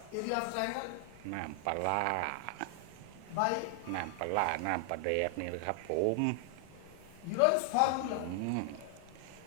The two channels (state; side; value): different; both; correlation 0.00